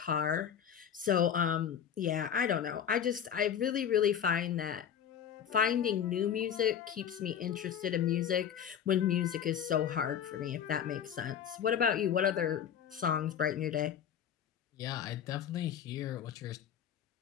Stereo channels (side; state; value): right; quieter; 8.6 dB